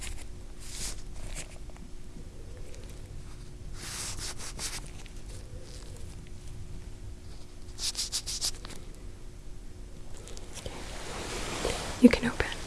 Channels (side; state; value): both; identical; correlation 1.00